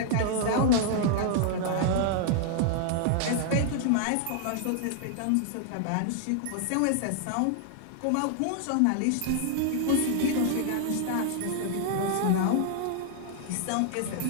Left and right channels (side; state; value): both; different; correlation 0.00